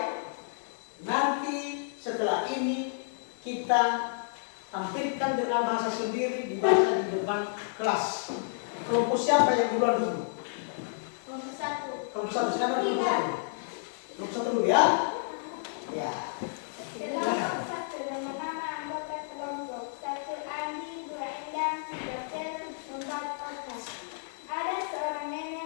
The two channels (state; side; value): silent; right; digital silence